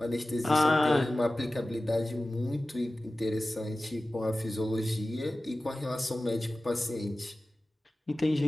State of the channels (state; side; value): normal; both; correlation 0.96